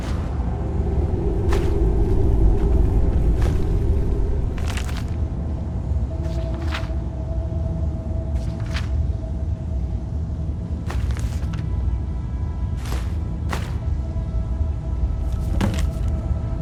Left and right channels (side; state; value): both; identical; correlation 1.00